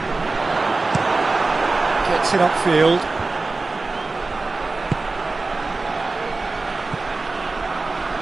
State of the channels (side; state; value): left; quieter; 3.6 dB